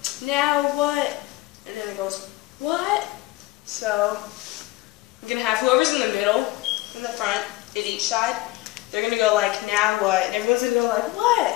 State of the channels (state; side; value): quieter; right; 19.4 dB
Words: now what? And then it goes, what? So I'm going to have whoever's in the middle, in the front, at each side, they're going to go like, now what? And everyone's going to go like,